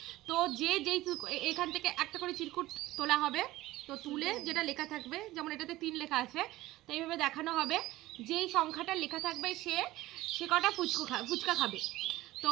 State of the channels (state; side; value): quieter; left; 17.2 dB